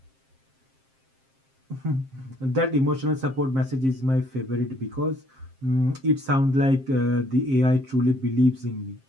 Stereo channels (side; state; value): left; late; 7.6 ms